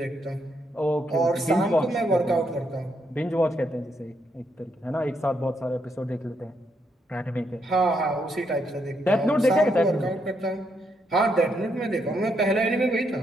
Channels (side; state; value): both; normal; correlation 0.77